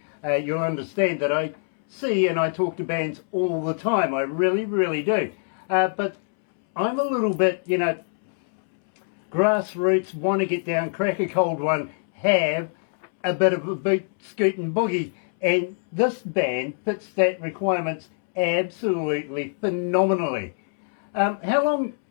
you'll understand that I see and I talk to bands all the time. I really, really do. But I'm a little bit, grassroots, want to get down, crack a cold one, have a bit of a boot, scoot and boogie. And this band fits that requirements absolutely phenomenally. How long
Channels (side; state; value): right; silent; 62 dB below the other